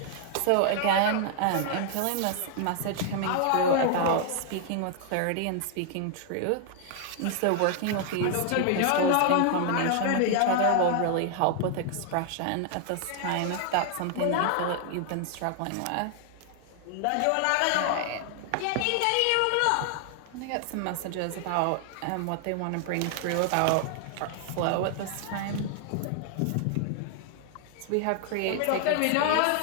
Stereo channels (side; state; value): both; different; correlation 0.00